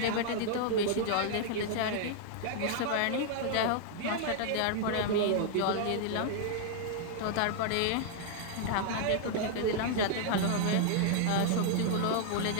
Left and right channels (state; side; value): different; both; correlation -0.01